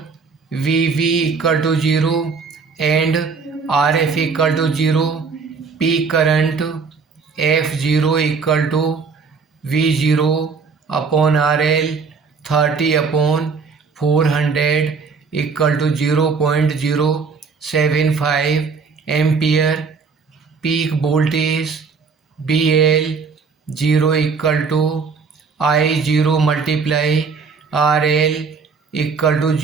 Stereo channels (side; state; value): left; quieter; 5.2 dB